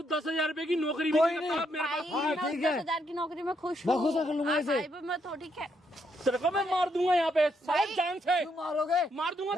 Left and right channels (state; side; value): normal; both; correlation 0.76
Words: 10,000 रुपए की नौकरी भी कोई नहीं नहीं। करता मेरे भाई पास। हाँ, मैं उस ठीक है। 10,000 की नौकरी में खुश मैं हूँ। खुश कर लूंगा आप इसे। भाई पे मत हो, ठीक है? तेरे को मैं मार दूंगा यहाँ पे सारे जान से, क्यों मारोगे? मार दूंगा